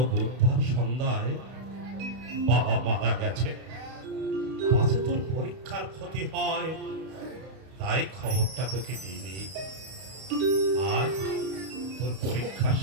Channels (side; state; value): left; late; 31 ms